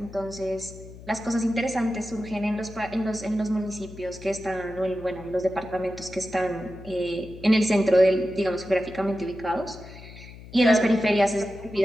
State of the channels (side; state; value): left; noise; hum, 16 dB below the sound